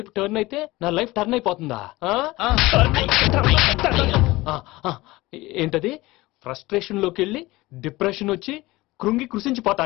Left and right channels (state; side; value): quieter; right; 19.9 dB